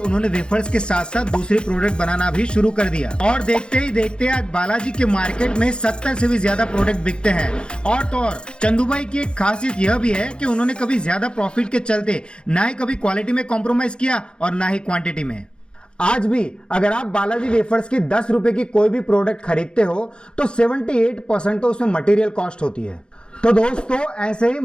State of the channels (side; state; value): right; late; 0.051 ms